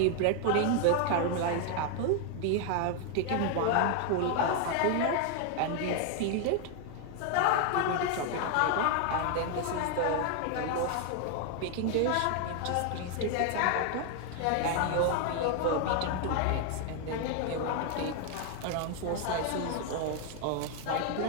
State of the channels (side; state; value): both; different; correlation 0.00